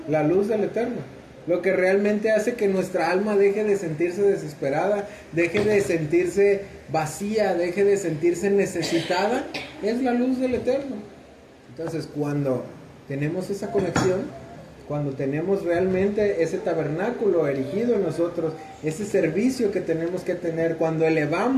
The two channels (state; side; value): identical; both; correlation 1.00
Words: la luz del Eterno. Lo que realmente hace que nuestra alma deje de sentirse desesperada, deje de sentirse vacía, deje de sentirse necesitada, es la luz del Eterno. Entonces, cuando tenemos esa conexión, cuando tenemos realmente ese tabernáculo erigido en nosotros, ese servicio que tenemos que tener, cuando